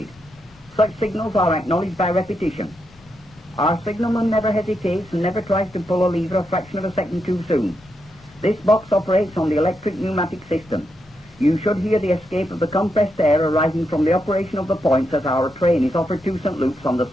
Such signals are acknowledged by repetition. Our signalman never hesitates and never tries to pull a lever a fraction of a second too soon. This box operates on the electric pneumatic system. You should hear the escape of the compressed air arising from the operation of the points as our train is offered to St. Luke's on the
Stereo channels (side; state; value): both; normal; correlation 0.83